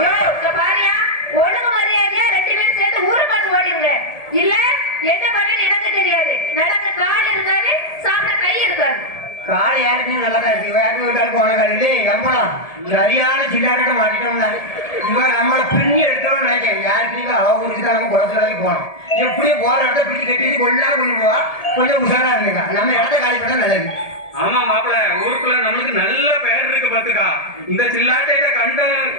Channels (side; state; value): right; late; 1.7 ms